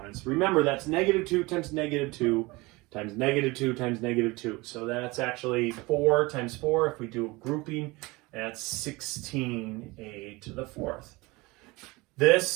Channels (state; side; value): quieter; left; 23.2 dB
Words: Remember, that's -2 times -2 times -2 times -2. So that's actually 4 times 4. If we do a grouping, that's 16a to the 4th. This